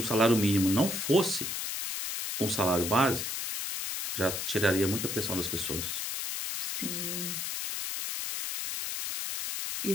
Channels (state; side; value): noise; left; hiss, 3 dB below the sound